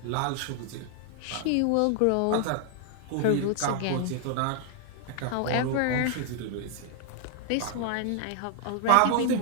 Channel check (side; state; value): both; different; correlation 0.00